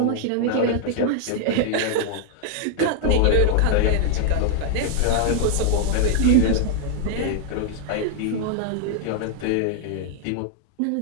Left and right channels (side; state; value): both; different; correlation 0.00